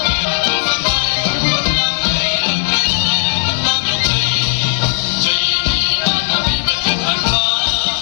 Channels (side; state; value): right; silent; digital silence